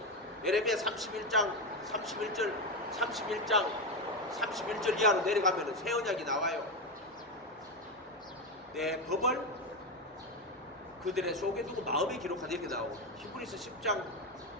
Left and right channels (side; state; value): both; normal; correlation 0.12